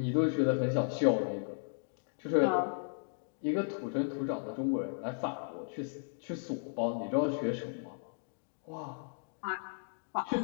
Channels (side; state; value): right; silent; digital silence